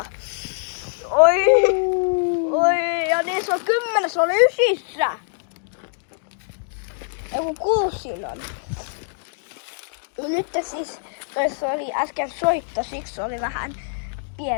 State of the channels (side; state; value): right; silent; digital silence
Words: Oi, ja niissä on 10, se oli 9. Joku 6 siinä on. Nyt siis, toissa oli äsken soitto, siksi oli vähän